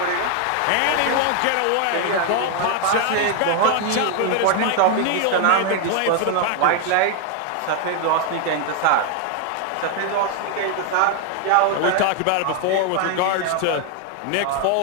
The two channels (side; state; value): both; different; correlation 0.00